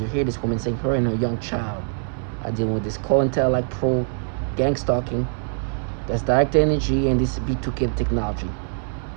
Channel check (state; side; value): silent; left; digital silence